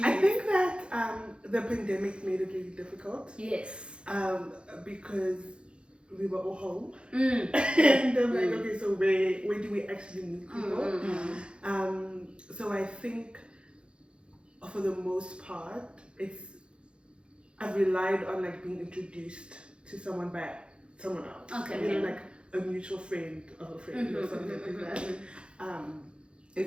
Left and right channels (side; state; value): left; late; 0.056 ms